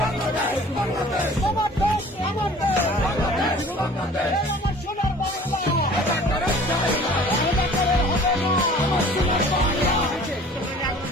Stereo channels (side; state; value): both; normal; correlation 0.48